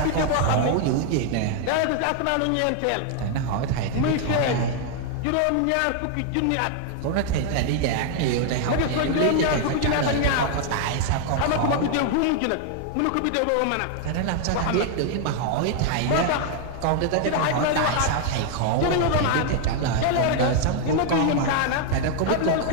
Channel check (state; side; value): different; both; correlation 0.00